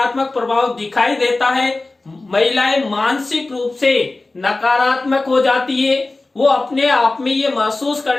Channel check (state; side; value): quieter; right; 3.2 dB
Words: प्रभाव दिखाई देता है। महिलाएं मानसिक रूप से नकारात्मक हो जाती है, वो अपने आप में ये महसूस